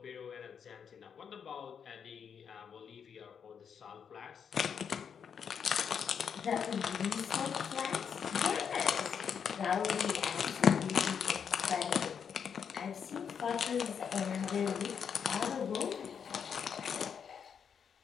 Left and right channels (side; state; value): right; quieter; 7.2 dB